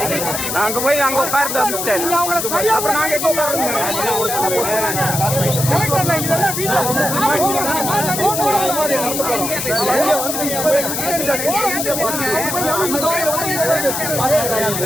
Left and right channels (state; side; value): noise; left; hiss, 3 dB below the sound